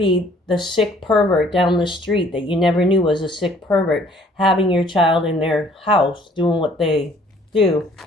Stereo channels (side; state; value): both; normal; correlation 0.58